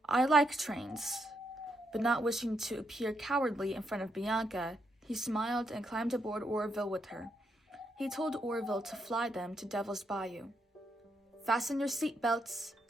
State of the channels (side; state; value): both; normal; correlation 0.78